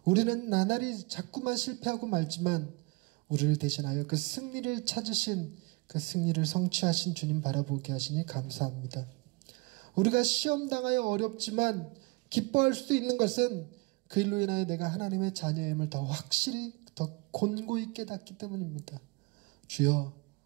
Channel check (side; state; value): left; quieter; 27.2 dB